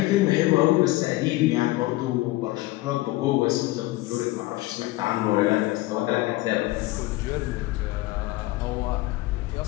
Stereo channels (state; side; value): quieter; right; 18.9 dB